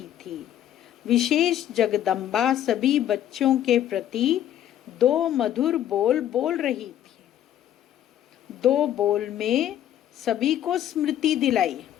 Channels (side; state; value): right; quieter; 11.4 dB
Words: थी। विशेष जगदम्बा सभी बच्चों के प्रति दो मधुर बोल बोल रही थी। दो बोल में सभी को स्मृति दिलाई।